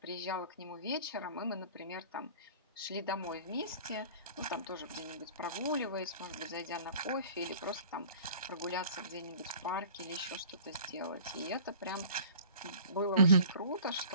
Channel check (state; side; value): inverted; both; correlation -0.46